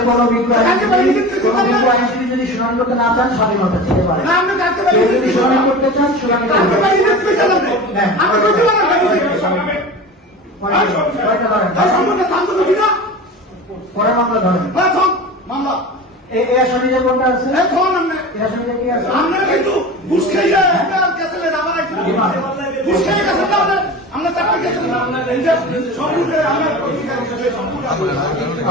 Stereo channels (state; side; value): normal; both; correlation 0.32